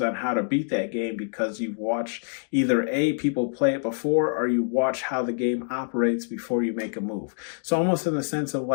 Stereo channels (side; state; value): right; silent; digital silence